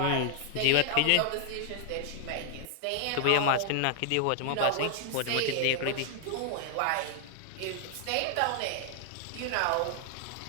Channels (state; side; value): different; both; correlation 0.00